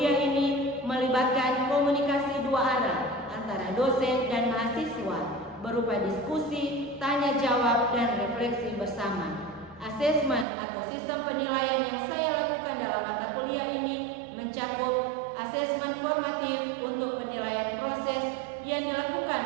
ini melibatkan komunikasi dua arah antara dosen dan mahasiswa berupa diskusi, tanya jawab, dan refleksi bersama. Asesmen atau sistem penilaian yang saya lakukan dalam mata kuliah ini mencakup asesmen formatif untuk penilaian proses yang dilakukan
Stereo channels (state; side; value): drops out; left; at 10.5 s